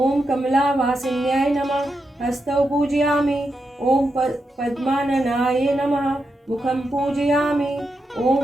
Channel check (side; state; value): both; normal; correlation 0.86